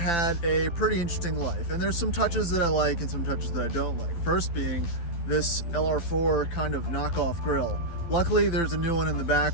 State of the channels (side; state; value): right; late; 12 ms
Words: a pretty interesting life, and there's some touches that I like and some touches that I don't like. First being this LR4 kind of knockoff grille. Luckily, there's a new one in the back,